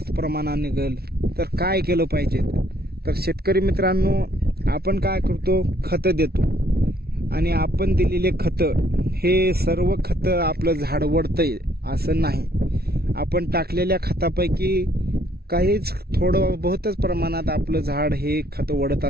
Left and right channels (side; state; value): left; late; 0.45 ms